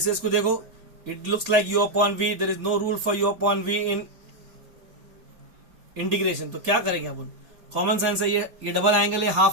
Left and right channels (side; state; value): left; late; 4.3 ms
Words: इसको देखो, it looks like u upon v. there is no rule for u upon v in integration. तो क्या करेंगे अपन, कॉमन सेंस है, ये double angle है,